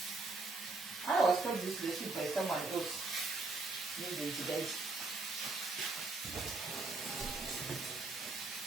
I was told this recipe by someone else. Maybe guys.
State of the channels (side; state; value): left; quieter; 3.5 dB